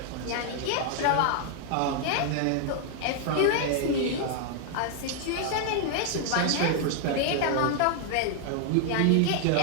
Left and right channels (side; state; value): both; different; correlation 0.00